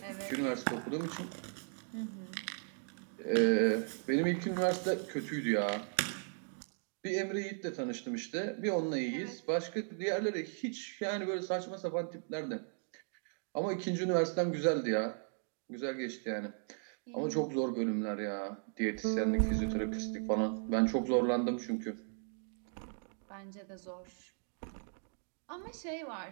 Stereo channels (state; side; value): silent; left; 53 dB below the other